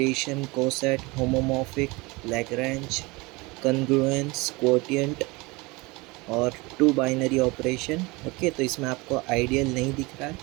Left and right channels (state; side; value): quieter; left; 24.6 dB